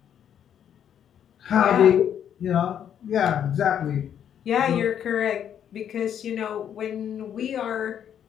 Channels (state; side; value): quieter; right; 9.2 dB